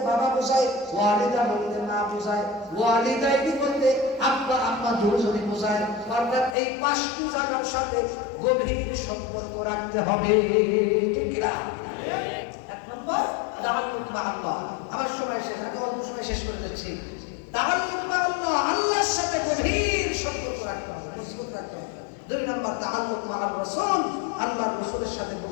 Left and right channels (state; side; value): drops out; right; at 6.6 s